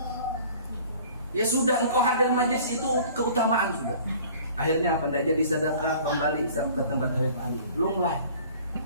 Ya sudah, engkau hadir majlis itu keutamaan sudah. Akhirnya apa? Tidak jadi sedekah, kembali ke tempat Habib Ali. Belum lah.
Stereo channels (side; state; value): both; inverted; correlation -0.49